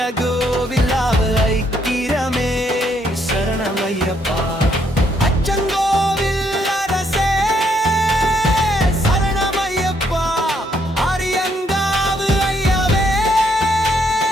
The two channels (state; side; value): normal; both; correlation 0.72